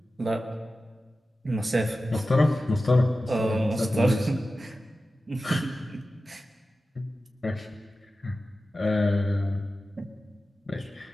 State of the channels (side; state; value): both; normal; correlation 0.94